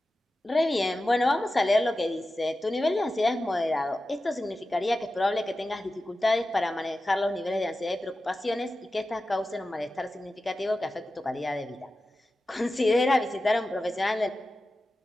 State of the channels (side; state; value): both; normal; correlation 0.93